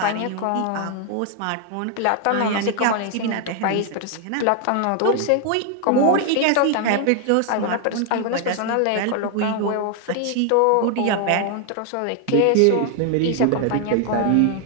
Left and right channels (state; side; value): different; both; correlation 0.00